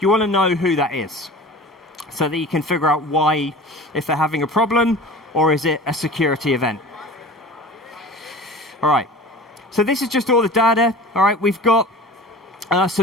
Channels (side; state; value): both; normal; correlation 0.39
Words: want to know who that is so that you can figure out why, if they're having a problem, or is it a security event? All right. So this is just all the data. All right. We've got